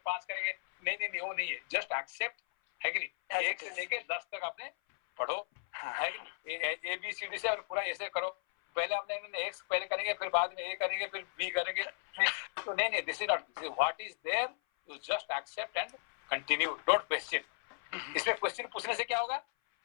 5 करेंगे। नहीं, वो नहीं है, जस्ट एक्सेप्ट, है कि नहीं? 1 से लेके 10 तक आपने पढ़ो, है कि नहीं? ABCD से और पूरा ऐसे करो। पहले आपने X पहले करेंगे, फिर बाद में A करेंगे, फिर B करेंगे। तो नहीं, this is not, what is there, you just accept and continue, don't question. इसमें क्वेश्चन पूछने से क्या होगा,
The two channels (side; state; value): right; silent; 54 dB below the other